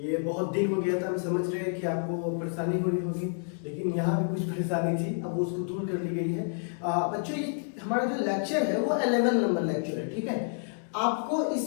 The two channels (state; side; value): silent; right; digital silence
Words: बहुत दिन हो गया था, हम समझ रहे हैं कि आपको परेशानी हो रही होगी, लेकिन यहाँ भी कुछ परेशानी थी, अब उसको दूर कर ली गई है। बच्चों, ये हमारा जो लेक्चर है वो 11 नंबर लेक्चर है, ठीक है। आपको